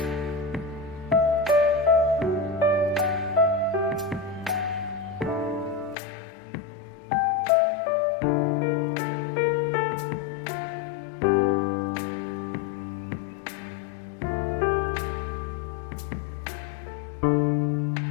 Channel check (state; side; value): drops out; right; at 6.0 s